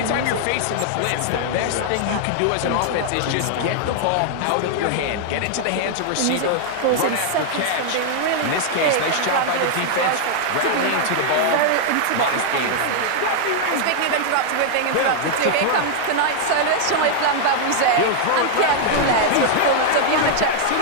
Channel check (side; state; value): both; different; correlation -0.01